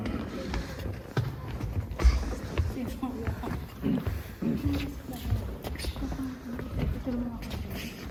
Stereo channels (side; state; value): both; identical; correlation 1.00